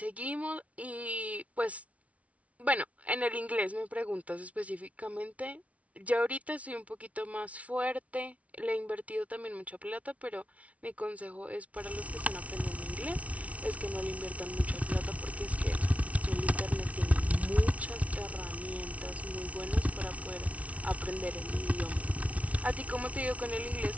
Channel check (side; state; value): left; late; 0.066 ms